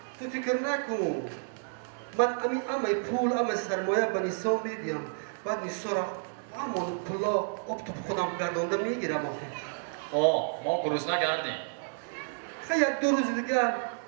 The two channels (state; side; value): silent; left; digital silence